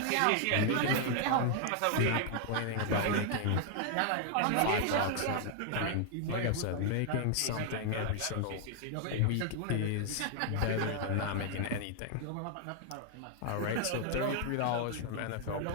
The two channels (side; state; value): both; different; correlation 0.00